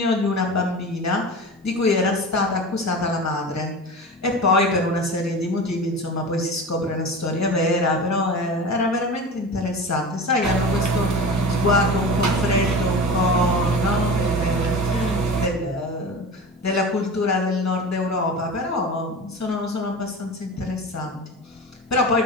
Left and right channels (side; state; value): both; normal; correlation 0.31